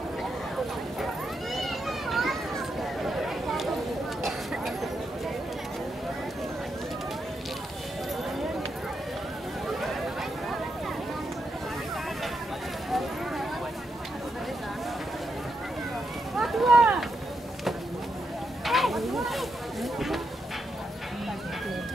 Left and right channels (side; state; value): both; normal; correlation 0.83